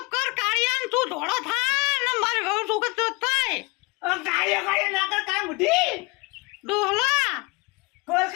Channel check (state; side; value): quieter; right; 27.1 dB